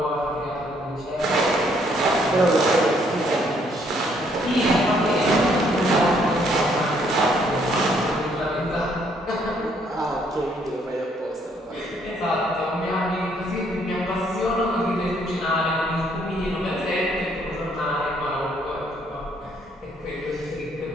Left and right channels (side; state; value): both; normal; correlation 0.67